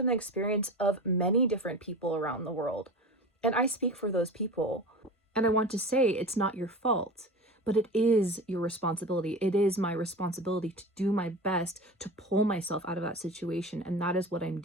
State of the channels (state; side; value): normal; both; correlation 0.32